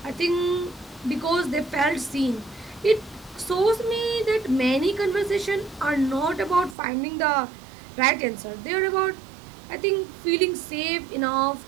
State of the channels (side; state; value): left; drops out; at 6.8 s